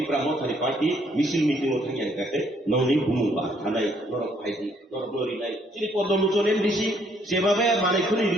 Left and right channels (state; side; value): normal; both; correlation 0.67